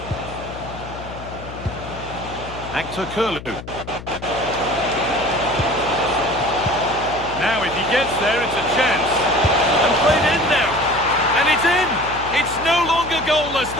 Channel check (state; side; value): noise; left; hum, 13 dB below the sound